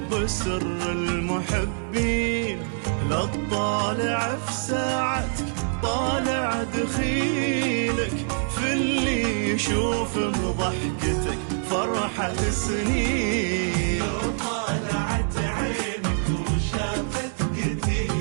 سر المحبين. لا تطالع في ساعتك طالع دخيلك، في اللي يشوف بضحكتك فرحة سنين. لو طالعت عينك وشافت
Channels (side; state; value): left; silent; digital silence